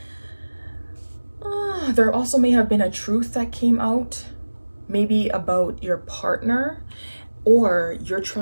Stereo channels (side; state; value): both; inverted; correlation -1.00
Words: There also may have been a truth that came out, maybe about your partner, or you're